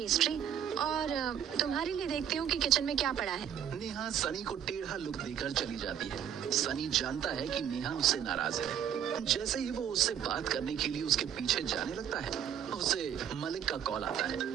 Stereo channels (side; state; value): left; quieter; 9.3 dB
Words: और तुम्हारे लिए देखती हूँ कि किचन में क्या पड़ा है। नेहा सनी को टेढ़ा लुक देकर चली जाती है। सनी जानता है कि नेहा उससे नाराज है। जैसे ही वो उससे बात करने के लिए उसके पीछे जाने लगता है, उसे मलिक का कॉल आता